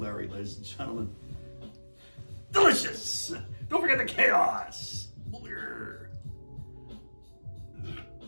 ladies and gentlemen. Delicious! Don't forget the chaos!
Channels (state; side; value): inverted; both; correlation -1.00